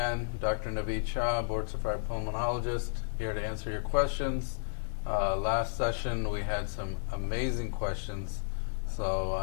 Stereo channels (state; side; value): silent; right; digital silence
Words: Dr. Naveed Shah, board-certified pulmonologist, here to answer your questions. Last session, we had some amazing questions,